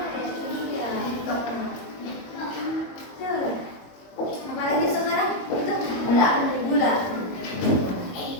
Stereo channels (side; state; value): right; late; 22 ms